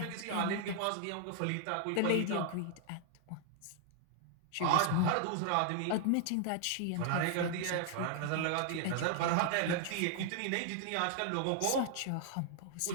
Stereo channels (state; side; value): different; both; correlation 0.00